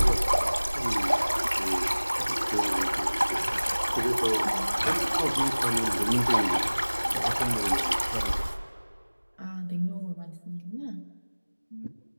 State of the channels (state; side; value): inverted; both; correlation -1.00